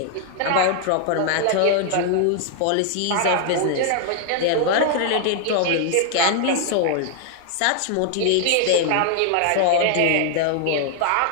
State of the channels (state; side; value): different; both; correlation 0.00